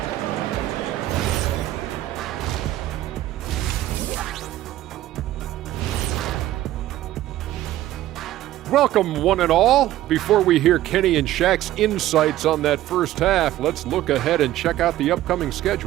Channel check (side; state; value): left; quieter; 14.3 dB